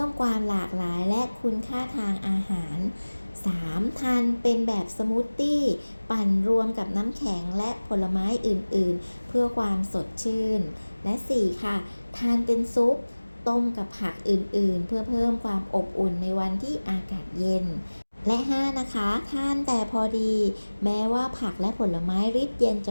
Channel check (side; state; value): both; inverted; correlation -1.00